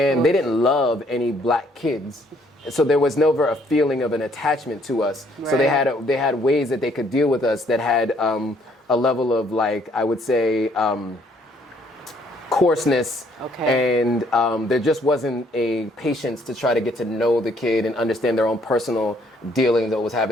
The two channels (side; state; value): both; normal; correlation 0.66